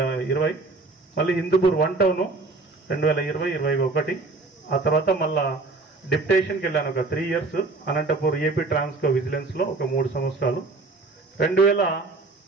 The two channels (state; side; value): quieter; left; 3.6 dB